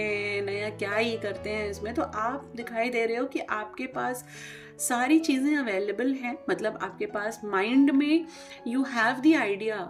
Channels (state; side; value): identical; both; correlation 1.00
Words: नया क्या ही करते हैं इसमें। तो आप दिखाई दे रहे हो कि आपके पास सारी चीज़ें अवेलेबल हैं, मतलब आपके पास माइंड में यू हैव द आइडिया,